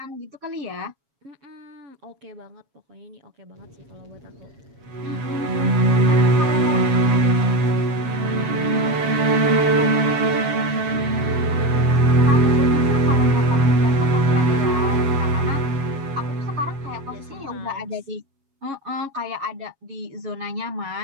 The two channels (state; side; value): late; left; 7.3 ms